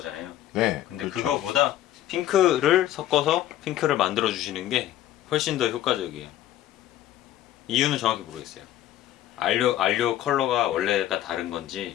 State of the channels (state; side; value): quieter; right; 13.0 dB